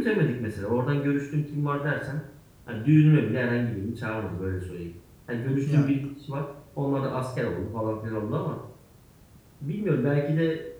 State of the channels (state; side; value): identical; both; correlation 1.00